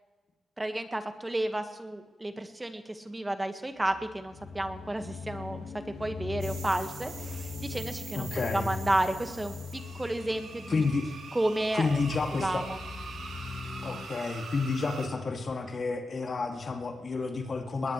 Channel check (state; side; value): normal; both; correlation 0.91